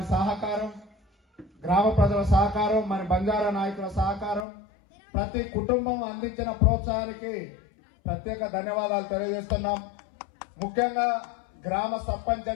సహకారం, గ్రామ ప్రజల సహకారం, మన బంజారా నాయకుల సహకారం, ప్రతి కుటుంబం అందించిన ప్రోత్సాహానికి ప్రత్యేక ధన్యవాదాలు తెలియజేస్తున్నాం. ముఖ్యంగా గ్రామ సర్పంచ్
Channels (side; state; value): right; drops out; at 4.5 s